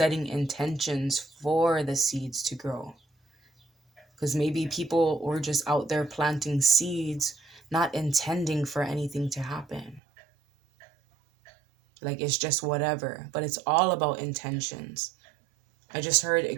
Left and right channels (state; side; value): drops out; left; at 10.0 s